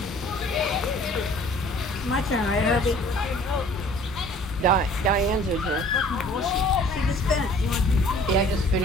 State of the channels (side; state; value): both; normal; correlation 0.52